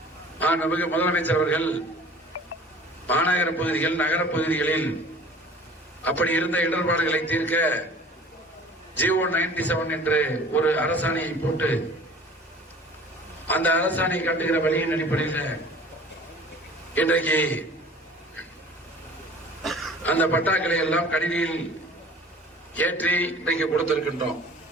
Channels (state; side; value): normal; both; correlation 0.45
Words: நமக்கு முதலமைச்சர் அவர்கள் மாநகர பகுதிகள், நகர பகுதிகளில் அப்படி இருந்த இடர்பாடுகளை தீர்க்க ஜிஓ 97 என்று ஒரு அரசாணையை போட்டு அந்த அரசாணை காட்டுகிற வழியின் அடிப்படையில் இன்றைக்கு அந்த பட்டாக்களை எல்லாம் கணினியில் ஏற்றி இன்றைக்கு கொடுத்திருக்கின்றோம்.